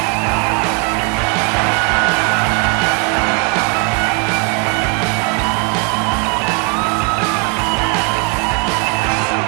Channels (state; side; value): quieter; left; 36.1 dB